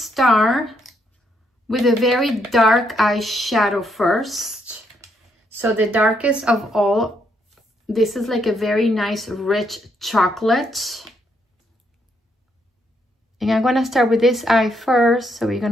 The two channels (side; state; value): both; normal; correlation 0.75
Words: with a very dark eyeshadow first. So the darkest of all, this is like a very nice rich chocolate. And I'm gonna start with this eye first. So we're